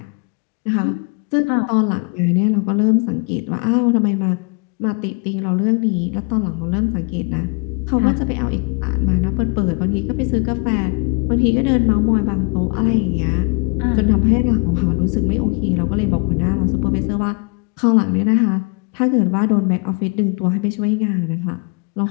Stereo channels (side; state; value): right; quieter; 32.5 dB